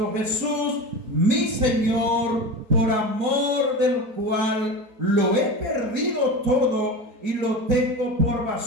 Jesús, mi Señor, por amor del cual lo he perdido todo y lo tengo por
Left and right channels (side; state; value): left; late; 4.2 ms